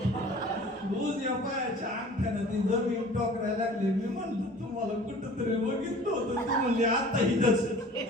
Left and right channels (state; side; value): normal; both; correlation 0.45